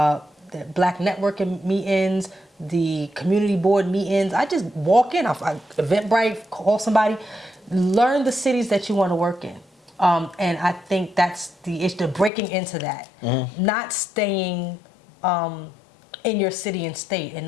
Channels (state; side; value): drops out; right; at 12.3 s